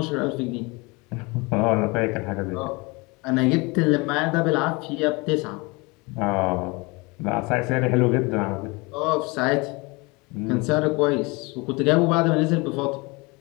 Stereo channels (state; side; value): quieter; right; 26.4 dB